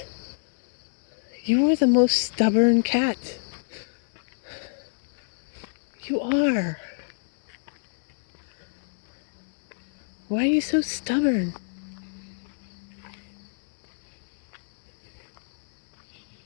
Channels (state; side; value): silent; right; 60 dB below the other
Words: You are the most stubborn cat. You are. Why are you so stubborn?